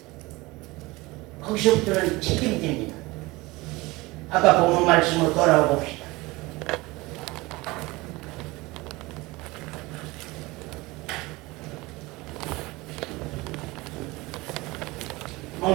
거기서부터는 책임집니다. 아까 보는 말씀으로 돌아와 봅시다.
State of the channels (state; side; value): quieter; left; 22.0 dB